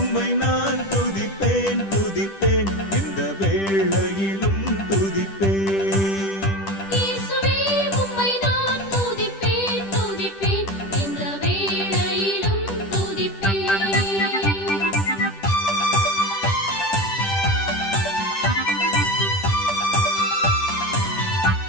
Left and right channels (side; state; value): right; late; 10 ms